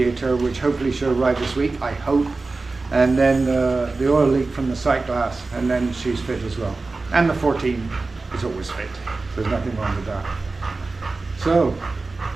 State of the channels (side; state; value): left; quieter; 3.6 dB